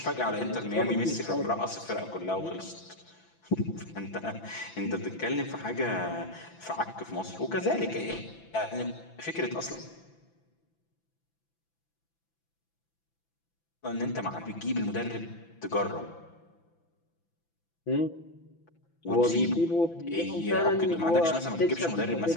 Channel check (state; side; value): late; right; 6.0 ms